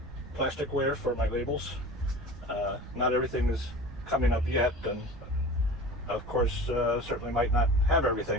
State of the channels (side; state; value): right; noise; rumble, 15 dB below the sound